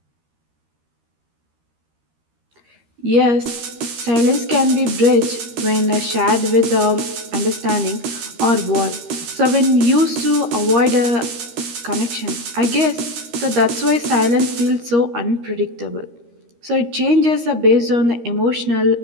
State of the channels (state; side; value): late; left; 13 ms